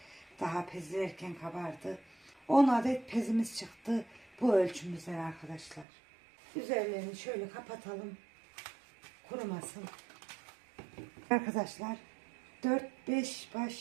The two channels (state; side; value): drops out; left; at 5.9 s